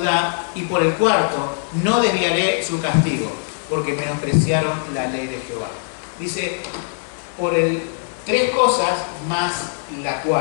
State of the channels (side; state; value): right; silent; 65 dB below the other